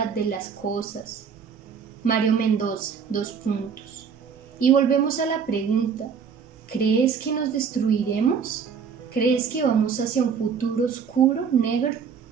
de las cosas. Mario Mendoza, 2 puntos. Y volvemos a la pregunta: ¿crees que nos destruiremos? ¿Crees que vamos hacia un futuro oscuro, negro?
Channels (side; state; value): left; quieter; 6.6 dB